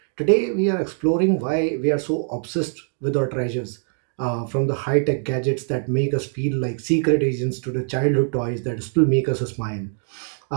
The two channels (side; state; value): left; silent; digital silence